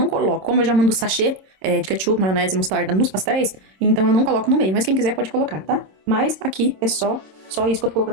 coloco. Como eu já mando sachê de ketchup, maionese e mostarda nos pastéis, então eu não coloco no meio. Mas quem quiser pode colocar, tá? Mas aqui é só isso que eu tô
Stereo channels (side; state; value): left; late; 26 ms